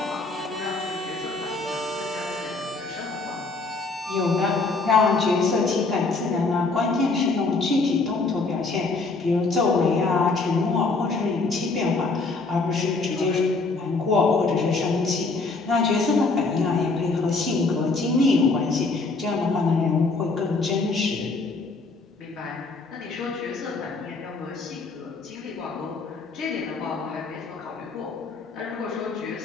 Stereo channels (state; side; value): quieter; right; 3.8 dB